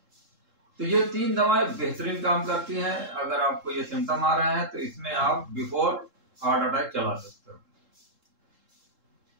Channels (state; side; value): late; left; 3.7 ms